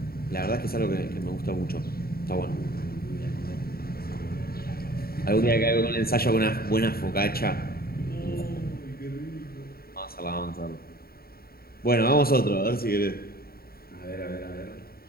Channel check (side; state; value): right; late; 0.44 ms